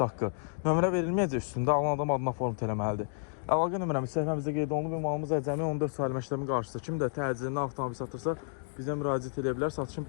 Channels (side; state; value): right; silent; 57 dB below the other